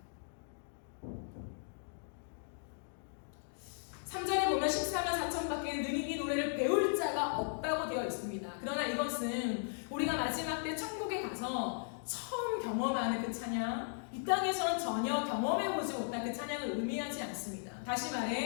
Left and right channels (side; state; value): right; silent; digital silence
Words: 3절에 보면 14만 4천 밖에 능히 이 노래를 배울 자가 없다고 되어 있습니다. 그러나 이것은 우리가 마지막 때 천국에 가서 처음 경험하는 그 찬양, 이 땅에서는 전혀 경험해보지 못한 그 찬양을 의미하지 않습니다. 다시